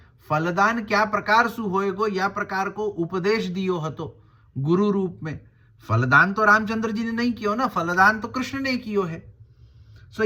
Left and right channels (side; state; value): both; identical; correlation 1.00